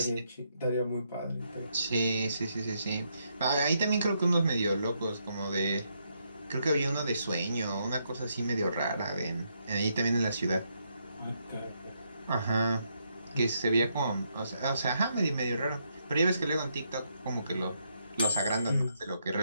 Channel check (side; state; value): both; inverted; correlation -0.77